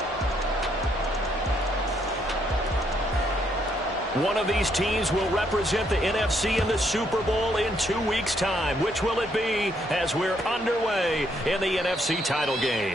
One of these teams will represent the NFC in the Super Bowl in 2 weeks' time. Which will it be as we're underway in the NFC title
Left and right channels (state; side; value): normal; both; correlation 0.73